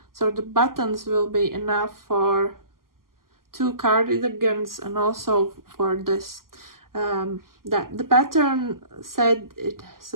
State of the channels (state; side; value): late; left; 0.92 ms